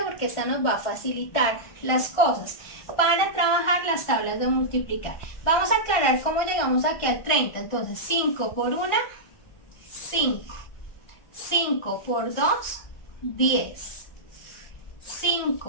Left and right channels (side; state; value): right; late; 1.5 ms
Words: Porque esta nos va a facilitar las cosas para trabajar las tablas de multiplicar. Vamos a aclarar cómo llegamos aquí al 30. Entonces 5 por 1, 5. 5 por 2, 10.